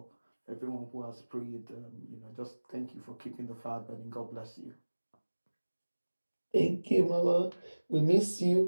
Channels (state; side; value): inverted; both; correlation -1.00